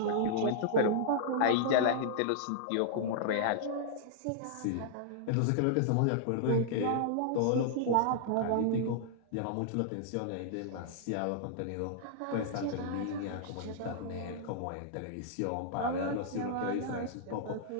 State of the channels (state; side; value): different; both; correlation -0.01